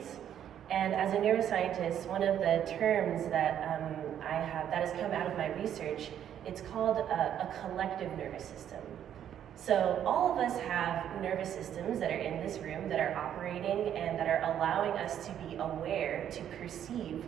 And as a neuroscientist, one of the terms that I have that has come out of my research, it's called a collective nervous system. So all of us have nervous systems that are in this room that are operating and that are allowing us to be aware, to perceive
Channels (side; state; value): left; quieter; 10.0 dB